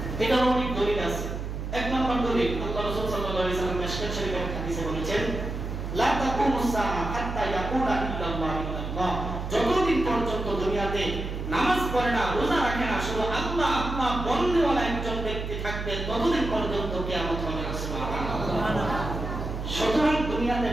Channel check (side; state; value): right; noise; hum, 5 dB below the sound